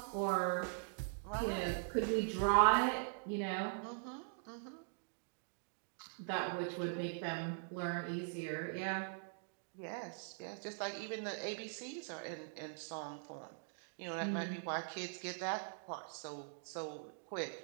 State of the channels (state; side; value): silent; left; digital silence